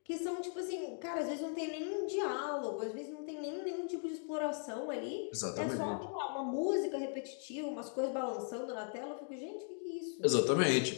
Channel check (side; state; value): right; silent; 52 dB below the other